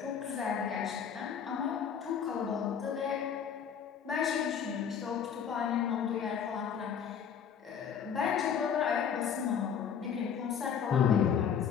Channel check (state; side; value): quieter; right; 7.6 dB